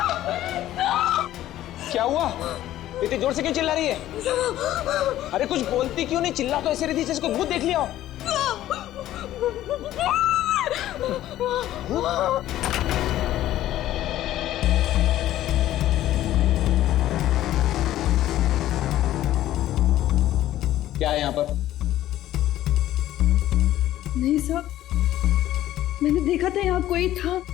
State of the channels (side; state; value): right; quieter; 13.6 dB